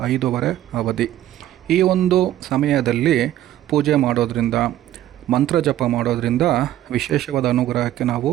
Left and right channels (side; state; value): left; quieter; 13.0 dB